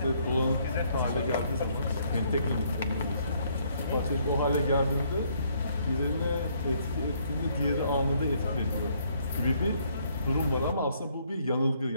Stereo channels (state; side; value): inverted; both; correlation -0.68